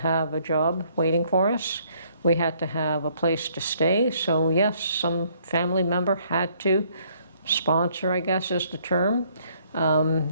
a job waiting for us. We had to have a place to stay. So yes, some family member had to sponsor, I guess is the term.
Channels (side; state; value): both; inverted; correlation -0.65